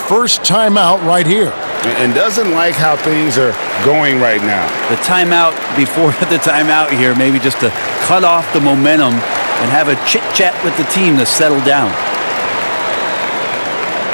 timeout right here. And doesn't like how things are going right now. The timeout before the timeout here, maybe just to cut off the momentum and have a chit-chat with the team to settle down.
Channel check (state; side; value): inverted; both; correlation -1.00